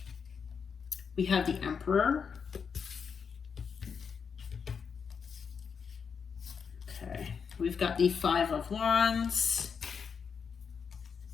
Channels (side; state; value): right; quieter; 6.3 dB